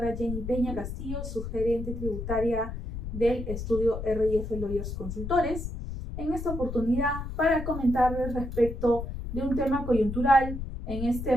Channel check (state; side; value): noise; left; rumble, 6 dB below the sound